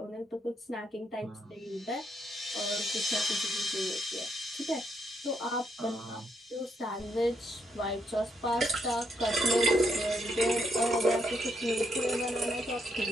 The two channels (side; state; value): both; normal; correlation 0.77